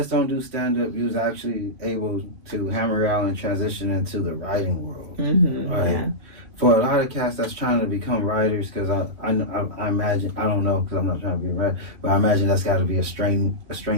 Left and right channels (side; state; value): left; late; 2.9 ms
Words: don't do stand-up. You was actually able to hammer out and transition into the writing world. Mm-hmm, right? yeah. For a lot of cats that's trying to become writers, because I imagine, I don't know because I'm not trying to be a writer, but I imagine that's got to be a